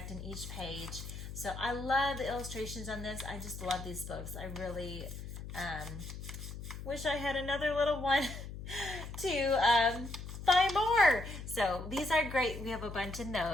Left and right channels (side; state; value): left; noise; hum, 9 dB below the sound